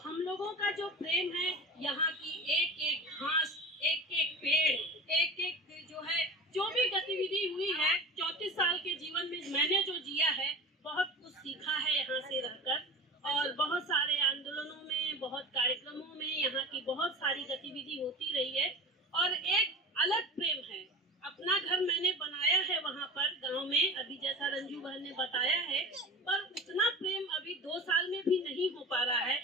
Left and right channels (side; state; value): both; normal; correlation 0.33